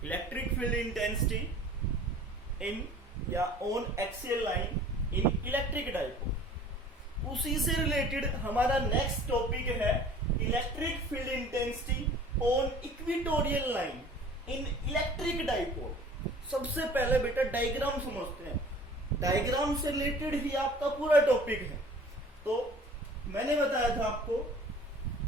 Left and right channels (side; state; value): both; normal; correlation 0.47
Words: इलेक्ट्रिक फील्ड इंटेंसिटी इन या on axial line in electric dipole. उसी से रिलेटेड हमारा नेक्स्ट टॉपिक है electric field intensity on equatorial line in electric dipole. सबसे पहले बेटा डायग्राम समझते हैं। डायग्राम से रिलेटेड ही आपका पूरा टॉपिक है। तो मैंने बताया था आपको